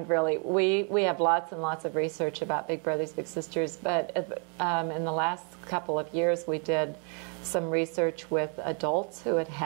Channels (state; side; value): quieter; left; 39.5 dB